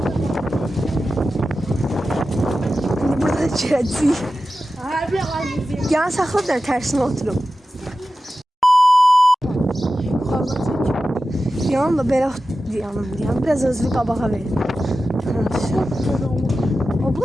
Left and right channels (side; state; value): both; normal; correlation 0.93